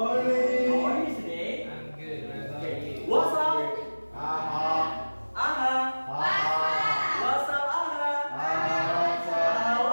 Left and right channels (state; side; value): inverted; both; correlation -1.00